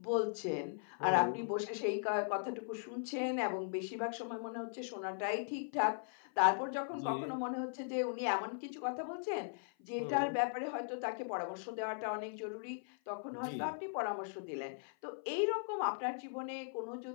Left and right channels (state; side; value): silent; right; 52 dB below the other